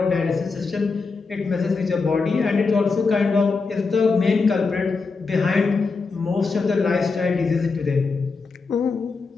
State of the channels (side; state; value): right; quieter; 4.4 dB